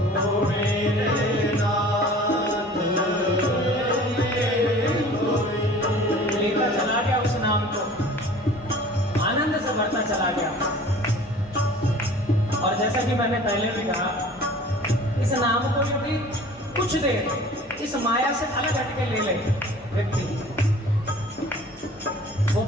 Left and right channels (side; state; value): both; normal; correlation 0.46